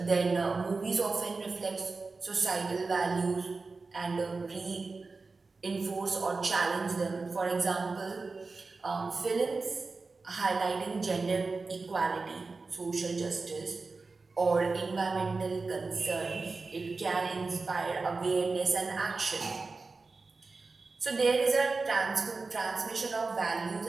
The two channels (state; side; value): quieter; left; 4.0 dB